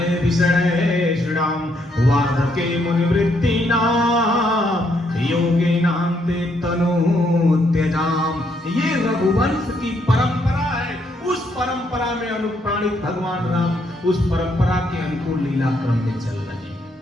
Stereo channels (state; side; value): normal; both; correlation 0.74